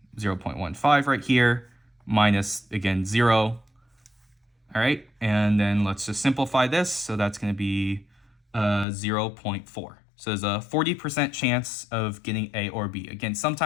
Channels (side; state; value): right; drops out; at 8.8 s